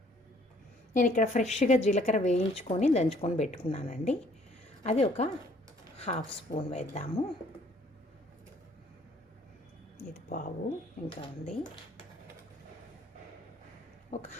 నేను ఇక్కడ ఫ్రెష్గా జీలకర్ర వేయించుకొని దంచుకొని పెట్టుకున్నానండి. అది ఒక హాఫ్ స్పూన్ వేద్దాము. ఇది పావు ఇంకా ఉంది. ఒక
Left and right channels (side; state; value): both; normal; correlation 0.60